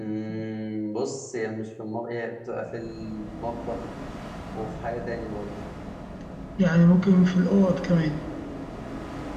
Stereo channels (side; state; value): both; identical; correlation 1.00